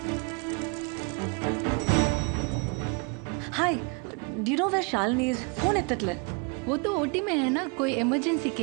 Hi, do you know where Shalini is? Phone एत्तट्ले। वो तो ओटी में है ना, कोई इमरजेंसी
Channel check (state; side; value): quieter; left; 33.7 dB